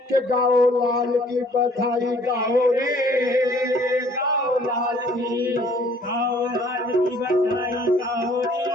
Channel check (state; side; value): normal; both; correlation 0.58